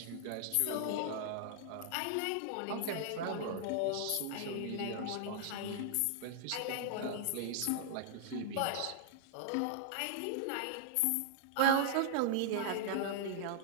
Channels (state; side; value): different; both; correlation -0.01